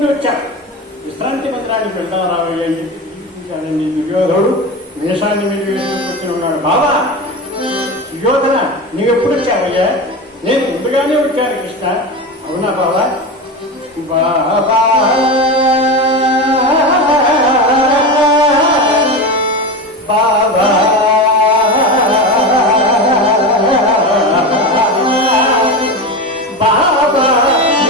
వచ్చాడు, విశ్రాంతి మందిరానికి వెళ్దాం రావయ్య అని చెప్పి దుర్యోధనుడు వేషాన్ని మీద వేసుకొచ్చి ఉన్నాడు. బావా సుయోధన నీవెప్పుడు వచ్చావయ్యా? నేను ముందుగానే వచ్చాను కృష్ణ. అవునా బావా? బాబా బాబా బాబా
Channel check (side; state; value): both; normal; correlation 0.22